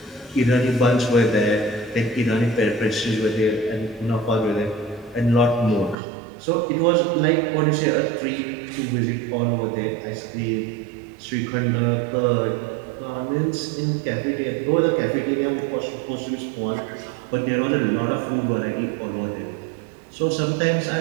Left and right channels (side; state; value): left; drops out; at 6.0 s